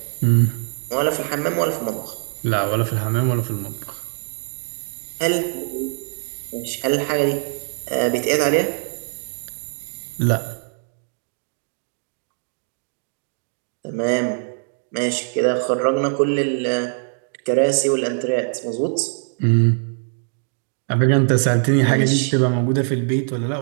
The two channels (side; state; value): left; silent; digital silence